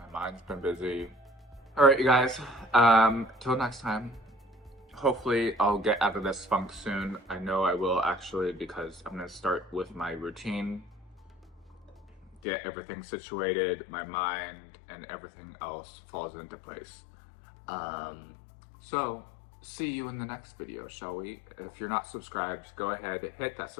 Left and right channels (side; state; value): right; drops out; at 12.4 s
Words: mind's been busy. All right, you guys, till next time. Hopefully I'll get out of this funk soon. I know I will actually, because I'm gonna start with my routine, get everything situated, my mind and everything else falls into place. So see you in the next video, shall we? If you're not subscribed, go ahead, hit that